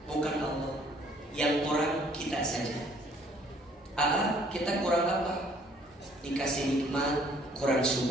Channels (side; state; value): both; normal; correlation 0.60